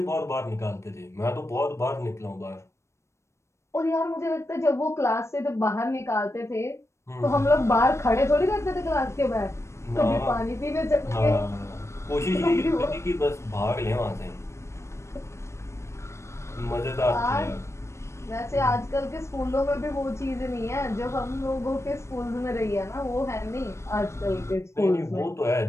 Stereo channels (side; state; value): right; late; 0.13 ms